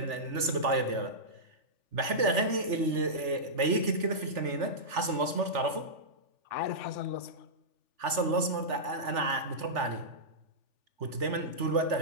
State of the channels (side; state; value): left; late; 3.4 ms